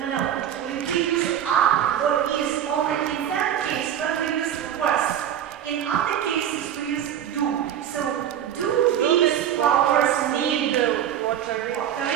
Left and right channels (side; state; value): left; quieter; 10.0 dB